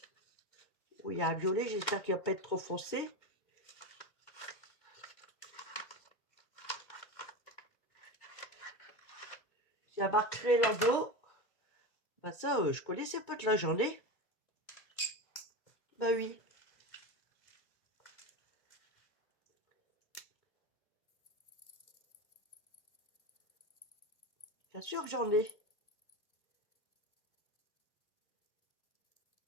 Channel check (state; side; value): late; right; 2.1 ms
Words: Oui, il y a un violet, j'espère qu'il ne va pas être trop foncé. la marque Relando. Bah ça, je connaissais pas de la journée. Bah oui. Bien sûr que j'en ai.